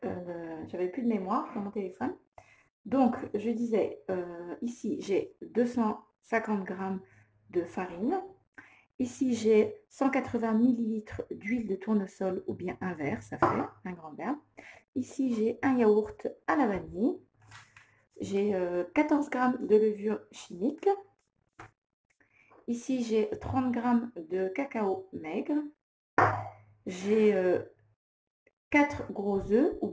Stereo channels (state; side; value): identical; both; correlation 1.00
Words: j'avais plus de mémoire dans mon téléphone. Donc je disais, ici j'ai 250 grammes de farine. Ici j'ai 180 millilitres d'huile de tournesol ou bien un verre, ça fait un grand verre. Ici j'ai un yaourt à la vanille. J'ai 14 grammes de levure chimique. Ici, j'ai 30 grammes de cacao maigre. J'ai 4 gros œufs ou